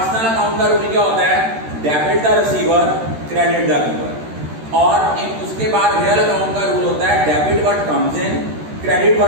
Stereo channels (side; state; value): left; late; 13 ms